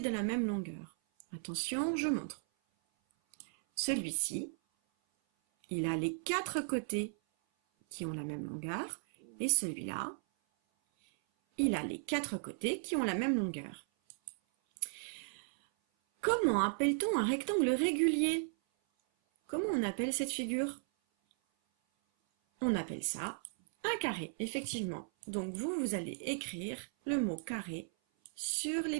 la même longueur. Attention, je montre. Celui-ci, il a les 4 côtés qui ont la même longueur, et celui-là, il a les 4 côtés qui ont la même longueur. Comment appelle-t-on un rectangle régulier? Comment on appelle cette figure? On appelle ça un carré, effectivement. Donc vous allez écrire le mot carré sur les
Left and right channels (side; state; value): left; silent; 54 dB below the other